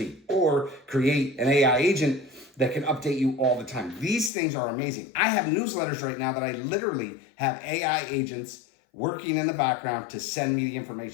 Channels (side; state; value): right; drops out; at 4.3 s